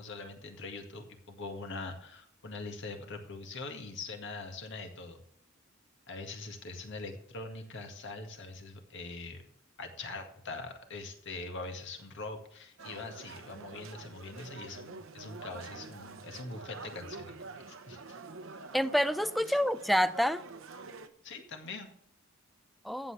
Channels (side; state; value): both; normal; correlation 0.78